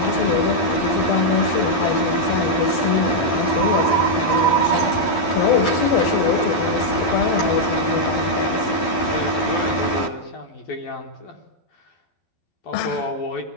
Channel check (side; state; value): right; late; 11 ms